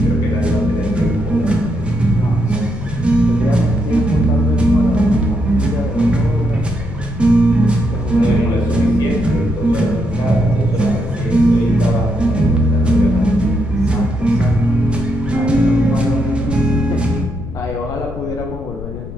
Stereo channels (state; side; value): noise; left; rumble, 11 dB below the sound